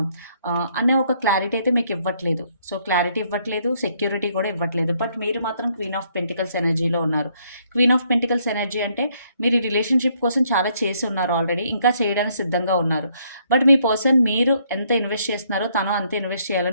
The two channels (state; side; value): inverted; both; correlation -0.69